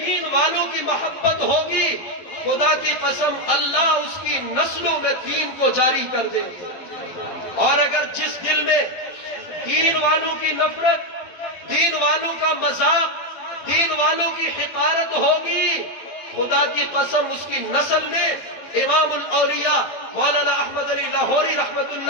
والوں کی محبت ہوگی خدا کی قسم اللہ اس کی نسلوں میں دین کو جاری کر دیں گے. اور اگر جس دل میں دین والوں کی نفرت، دین والوں کا مذاق، دین والوں کی حقارت ہوگی، خدا کی قسم اس کی نسل میں امام الاولیاء مولانا احمد علی لاہوری رحمت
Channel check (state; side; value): late; right; 12 ms